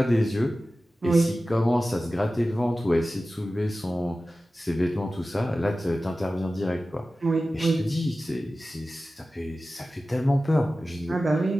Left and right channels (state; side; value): normal; both; correlation 0.95